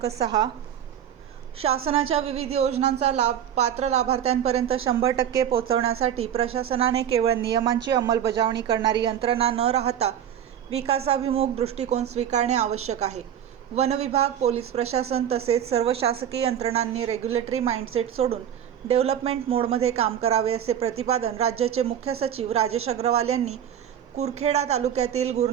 6. शासनाच्या विविध योजनांचा लाभ पात्र लाभार्थ्यांपर्यंत 100% पोहोचवण्यासाठी प्रशासनाने केवळ नियमांची अंमलबजावणी करणारी यंत्रणा न राहता विकासाभिमुख दृष्टिकोन स्वीकारणे आवश्यक आहे. वन विभाग, पोलीस प्रशासन तसेच सर्व शासकीय यंत्रणांनी रेग्युलेटरी माइंडसेट सोडून डेव्हलपमेंट मोडमध्ये काम करावे, असे प्रतिपादन राज्याचे मुख्य सचिव राजेश अग्रवाल यांनी कुरखेडा तालुक्यातील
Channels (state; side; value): quieter; left; 9.7 dB